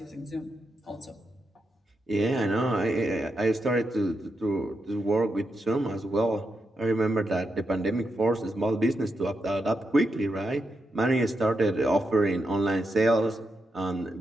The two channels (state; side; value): normal; both; correlation 0.85